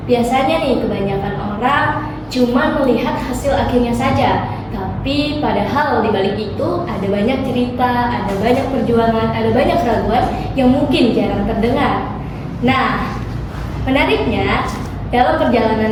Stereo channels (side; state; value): both; identical; correlation 1.00